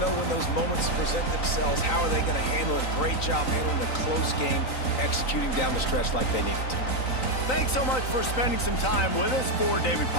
when those moments present themselves. How are they going to handle it? Great job handling the close game, executing down the stretch like they needed to. Thanks so much for spending some time with us. For David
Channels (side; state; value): right; late; 3.9 ms